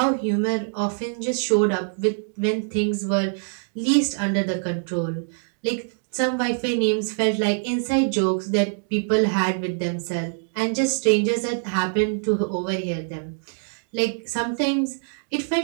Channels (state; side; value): silent; left; digital silence